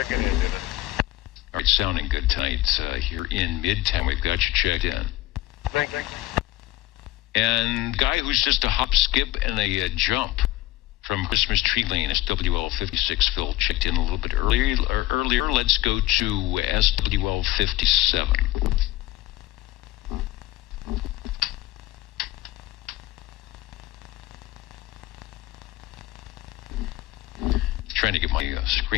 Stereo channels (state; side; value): quieter; right; 16.8 dB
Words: in. All right, sounding good tonight here in Midtown. We've got you checked in. Thank you. And guy who's just a hop, skip, and a jump from Christmas Tree Lane, SWL 56, Phil checked in a little bit earlier. Let's go to SWL 57. Trying to get my